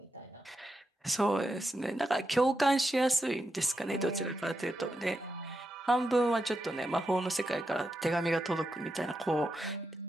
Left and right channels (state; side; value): normal; both; correlation 0.86